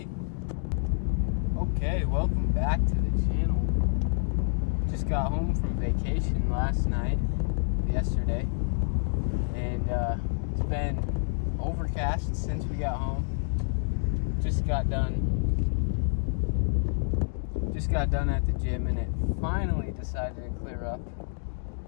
Okay, welcome back to the channel. Just got home from vacation yesterday, and it's been overcast since we got home. Just got done at the gym, and it finally decided to clear up,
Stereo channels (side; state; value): right; silent; digital silence